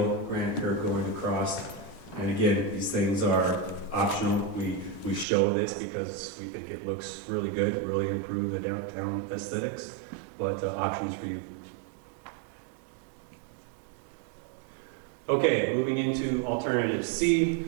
granite curb going across. And again, these things are optional. We show this because we think it looks really good, really improve the downtown aesthetics, but options for you. Okay, moving into alternative C.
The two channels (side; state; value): left; drops out; at 5.2 s